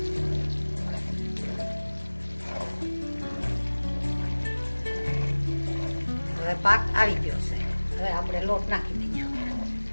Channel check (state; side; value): inverted; both; correlation -1.00